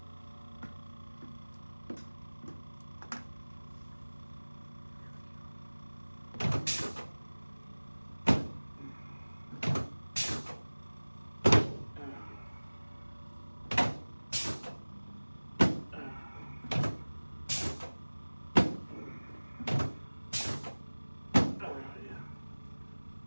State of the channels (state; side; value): inverted; both; correlation -1.00